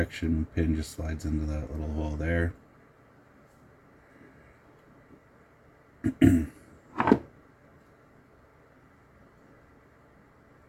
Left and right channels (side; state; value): both; identical; correlation 1.00